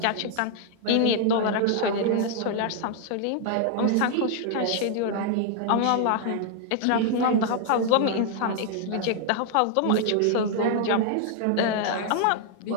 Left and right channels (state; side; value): different; both; correlation 0.00